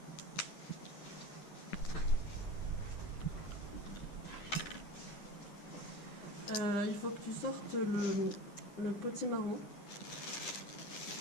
Il faut que tu sortes le potimarron.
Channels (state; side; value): late; right; 9.9 ms